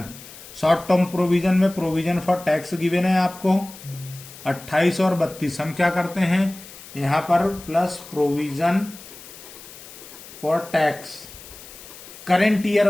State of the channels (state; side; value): noise; left; hiss, 17 dB below the sound